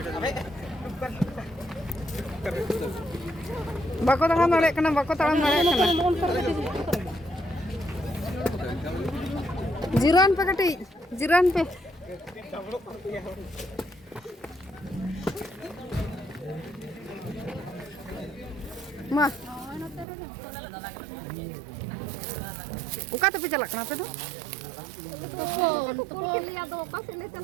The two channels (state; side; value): drops out; left; at 20.1 s